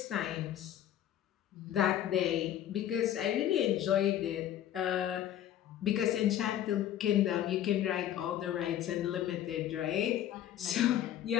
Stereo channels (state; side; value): quieter; right; 11.4 dB